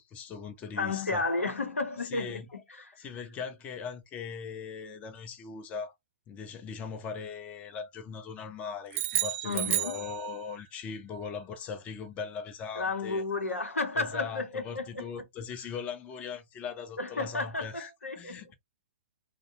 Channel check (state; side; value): normal; both; correlation -0.11